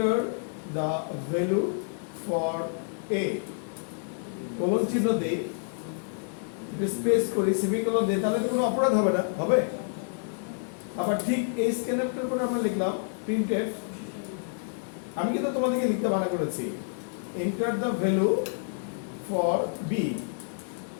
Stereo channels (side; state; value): right; silent; digital silence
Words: the value for a colon চিহ্ন দেই স্পেস করি সেমিকোলন দিই তাহলে তো কোনো অপরাধ হবে না, হবে? আবার ঠিক এই স্ক্যানারটার পরে আমরা লিখলাম প্রিন্টএফ, আমি কিন্তু তোমাদেরকে লিখতে মানা করেছি enter the value for b.